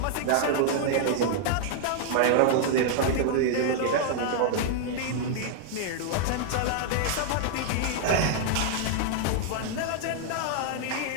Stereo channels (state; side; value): different; both; correlation -0.01